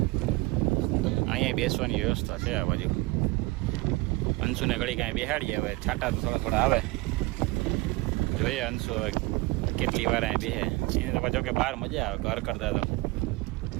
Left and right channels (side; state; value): left; quieter; 22.5 dB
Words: અહીંયા બેસવાની વ્યવસ્થા છે આ બાજુ. અંશુને ઘડી કાંઈ બેહાડીએ. હવે છાંટા તો થોડા થોડા આવે. જોઈએ અંશુ હવે કેટલી વાર અહીં બેસે. એને તો પાછો કે બહાર મજા આવે ઘર કરતા.